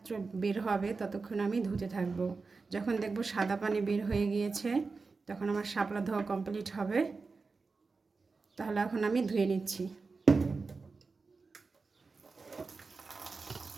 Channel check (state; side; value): quieter; left; 4.3 dB